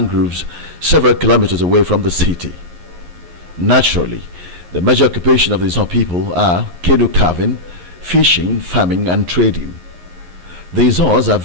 several kilometers away from the city. Naturally, the major occupation of the Izon people are canoe carving, fishing, farming, and trading. The Izons are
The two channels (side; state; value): left; late; 11 ms